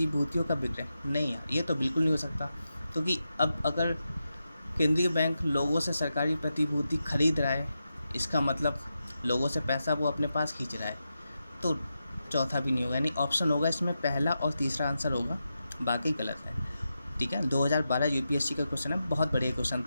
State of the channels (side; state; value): both; inverted; correlation -0.88